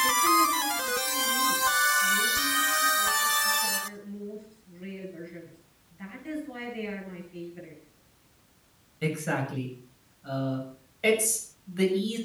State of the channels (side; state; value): both; identical; correlation 1.00